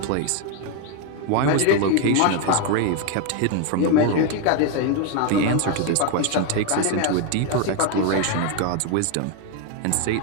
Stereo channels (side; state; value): both; different; correlation 0.01